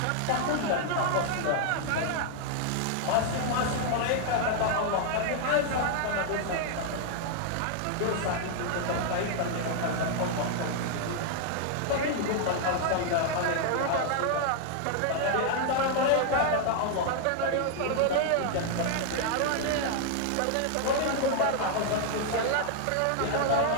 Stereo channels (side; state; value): both; different; correlation 0.00